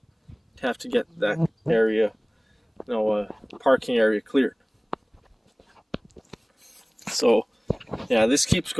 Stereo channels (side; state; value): both; identical; correlation 1.00